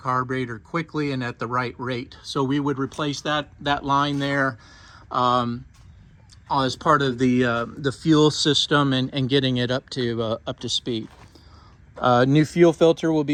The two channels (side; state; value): both; identical; correlation 1.00